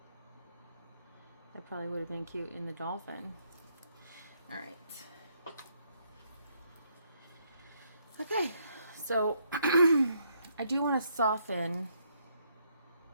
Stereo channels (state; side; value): inverted; both; correlation -0.73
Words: That probably would have been cute in the dolphin. All right. Okay, so I do want to soften